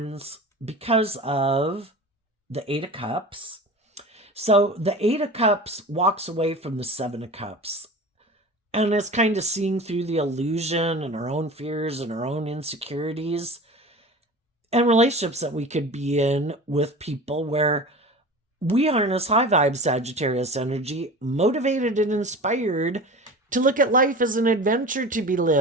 because of the Eight of Cups. So the Eight of Cups walks away from the Seven of Cups and is kind of seeing through the illusion and our own fears and our own insecurities and relationships that we could be in with people where we harness high vibe Sagittarius energy, motivated and inspired to look at life as an adventure to be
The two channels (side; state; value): both; normal; correlation 0.35